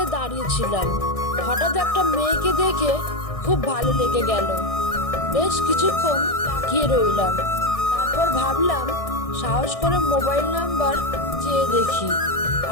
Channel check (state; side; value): late; right; 1.6 ms